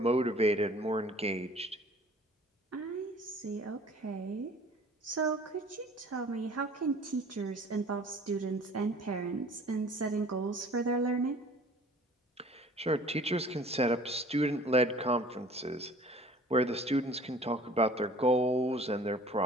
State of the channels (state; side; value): normal; both; correlation 0.49